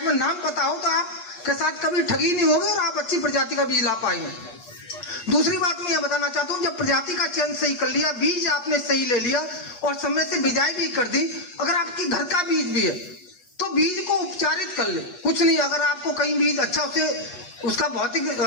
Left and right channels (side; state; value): right; late; 8.4 ms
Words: में नाम पता हो तो आपके साथ कभी ठगी नहीं होगी और आप अच्छी प्रजाति का बीज ला पाएंगे। दूसरी बात मैं यह बताना चाहता हूं, जब प्रजाति का चयन सही कर लिया, बीज आपने सही ले लिया और समय से बिजाई भी कर दी, अगर आपके घर का बीज भी है तो बीज को उपचारित कर ले। कुछ नहीं, अगर आपको कहीं बीज अच्छा उसे उसका भौतिक